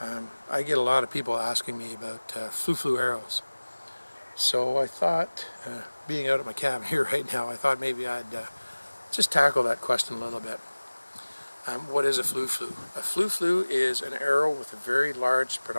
I get a lot of people asking me about flu arrows. So I thought, being out at my cabin here right now, I thought maybe I'd just tackle that question a little bit. What is a flu? A flu is an arrow with a very large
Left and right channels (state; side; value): inverted; both; correlation -1.00